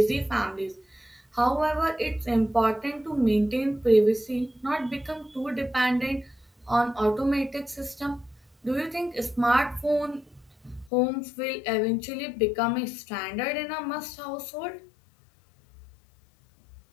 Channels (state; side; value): drops out; right; at 10.9 s